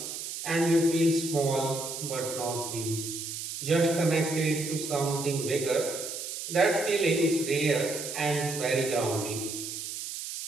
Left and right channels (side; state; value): right; noise; hiss, 7 dB below the sound